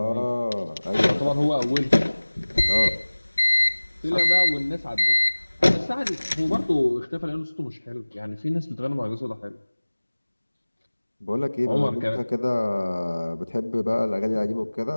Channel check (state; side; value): inverted; both; correlation -1.00